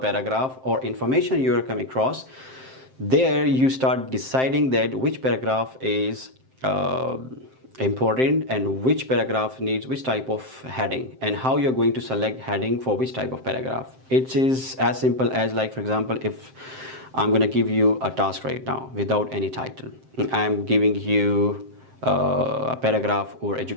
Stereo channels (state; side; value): late; left; 7.7 ms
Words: or information you are coming across. There you start deciding that which paragraph is important and which paragraph needs which type of heading, and how you're going to select heading for which type of paragraph. It is as simple as, like, for example, if I'm going to give you a task right now without any title. I'm giving you a paragraph or